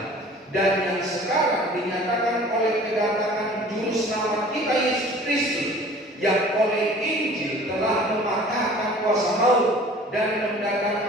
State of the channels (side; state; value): both; normal; correlation 0.47